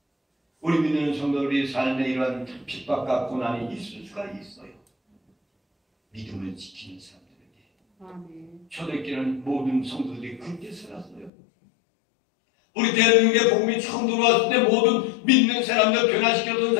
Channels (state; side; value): drops out; right; at 11.3 s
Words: 우리 믿는 성도들이 삶에 이러한 핍박과 고난이 있을 수가 있어요. 믿음을 지키는 사람들에게. 초대교회는 모든 성도들이 그렇게 살았어요. 우리 대한민국의 복음이 처음 들어왔을 때 모든 믿는 사람들, 변화시켰던